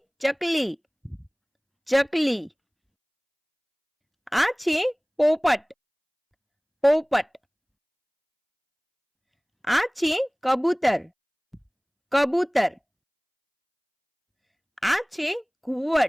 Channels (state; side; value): identical; both; correlation 1.00